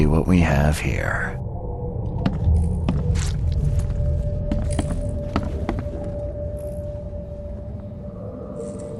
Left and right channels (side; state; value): both; identical; correlation 1.00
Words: what we have here.